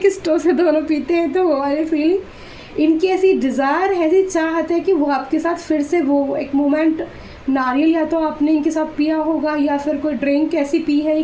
स्ट्रॉ से दोनों पीते हैं, तो वो वाली फीलिंग इनकी ऐसी डिज़ायर है, ऐसी चाहत है कि वो आपके साथ फिर से वो एक मोमेंट, नारियल या तो आपने इनके साथ पिया होगा या फिर कोई ड्रिंक ऐसी पी है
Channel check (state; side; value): identical; both; correlation 1.00